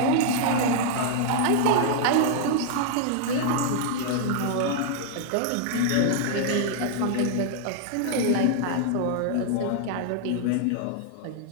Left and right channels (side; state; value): both; different; correlation -0.01